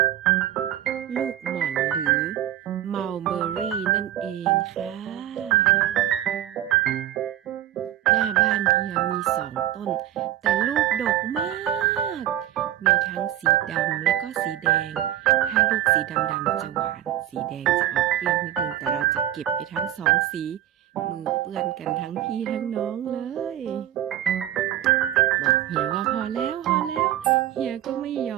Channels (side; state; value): left; quieter; 12.5 dB